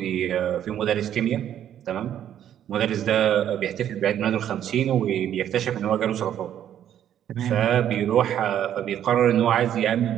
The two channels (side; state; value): left; quieter; 10.4 dB